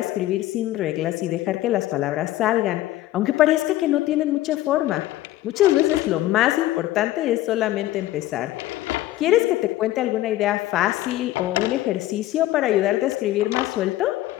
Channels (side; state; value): right; quieter; 15.2 dB